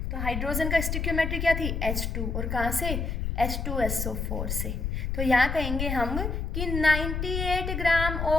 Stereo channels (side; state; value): left; noise; rumble, 2 dB below the sound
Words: तो हाइड्रोजन का स्टिक्योमेट्री क्या थी H2, और कहाँ से H2SO4 से। तो यहाँ कहेंगे हम कि 98 gram